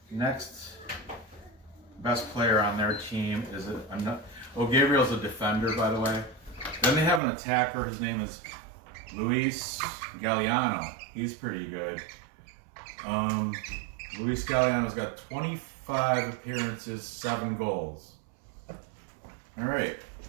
next best player on their team is Gabriel's a defender, by the way. Then they have an attacker. His name is Luis Galliano. He's pretty good. Luis Galliano's got 25 appearances, 7 goals. All right.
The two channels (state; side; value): drops out; left; at 7.2 s